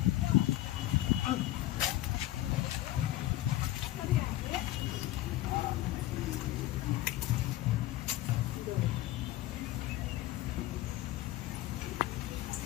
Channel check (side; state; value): right; quieter; 15.3 dB